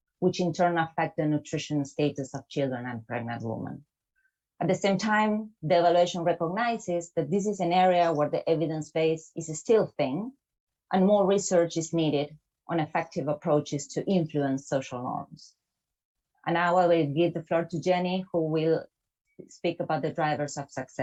which in turn affect the nutrition status of children and pregnant women. At the same time, the evaluation recognizes that this is an area where the evidence base is still thin, and more research is needed on effective approaches to influence social norms. And now I will give the floor to Jenny, who will speak about the drivers of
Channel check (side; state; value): both; identical; correlation 1.00